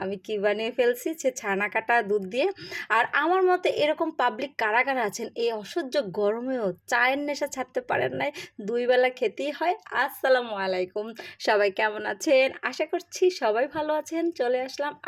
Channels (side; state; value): both; identical; correlation 1.00